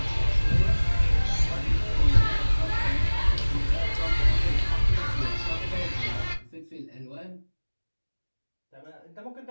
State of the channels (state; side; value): inverted; both; correlation -1.00